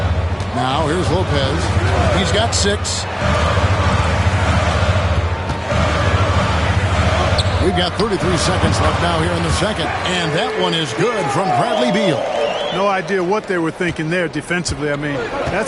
Now here's Lopez. He's got 6. We've got 33 seconds left now here in the second. And that one is good from Bradley Beal. No idea what they were thinking there defensively. I mean,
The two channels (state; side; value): identical; both; correlation 1.00